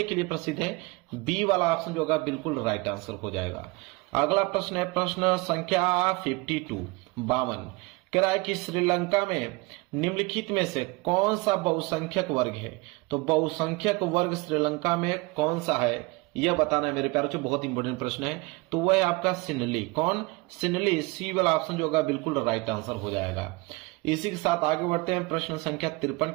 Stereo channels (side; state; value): left; quieter; 24.9 dB